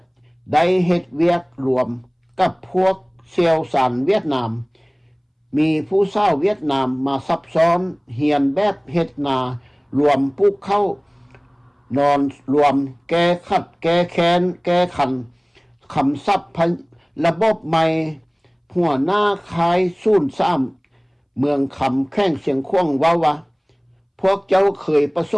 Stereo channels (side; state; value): both; identical; correlation 1.00